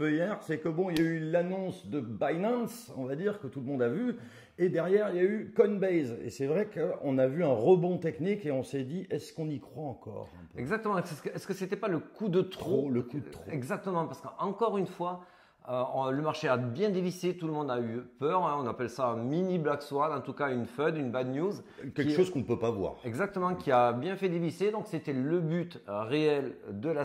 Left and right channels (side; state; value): both; identical; correlation 1.00